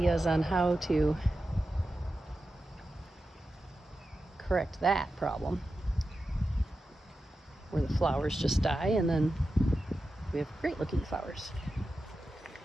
on how to correct that problem, where the flowers just die and then we have great looking flowers.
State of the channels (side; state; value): both; normal; correlation 0.91